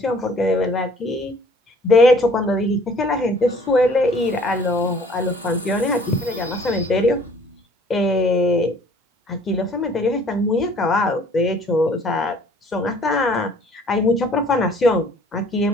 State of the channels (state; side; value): normal; both; correlation 0.55